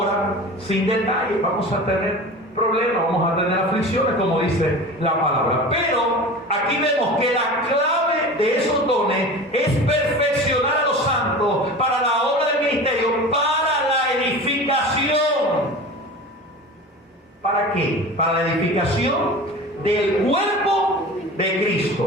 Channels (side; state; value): both; normal; correlation 0.34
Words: sin detalle. Vamos a tener problemas, vamos a tener aflicciones, como dice la palabra. Pero aquí vemos que la clave de esos dones es perfeccionar a los santos para la obra del ministerio, para la edificación. ¿Para qué? Para la edificación del cuerpo de